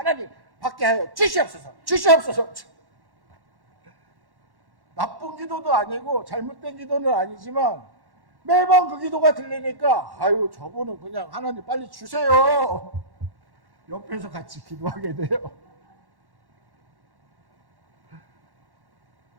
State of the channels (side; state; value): left; late; 1.1 ms